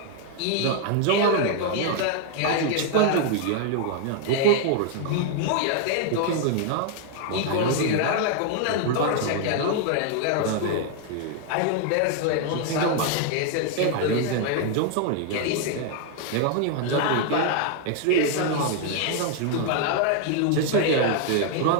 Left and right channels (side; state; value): both; different; correlation 0.00